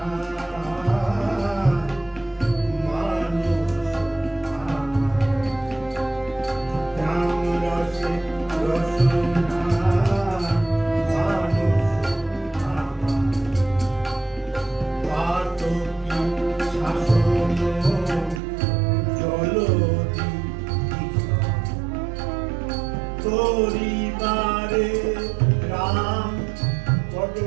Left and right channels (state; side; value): drops out; left; at 18.4 s